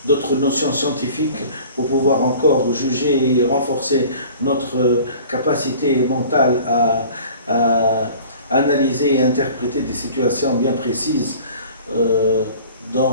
scientifiques pour pouvoir encore juger et renforcer notre capacité mentale à analyser et interpréter des situations bien précises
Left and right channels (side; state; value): both; inverted; correlation -0.46